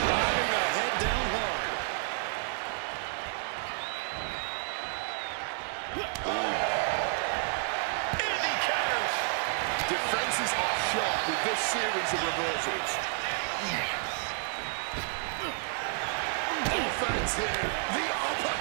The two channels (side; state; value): left; silent; 57 dB below the other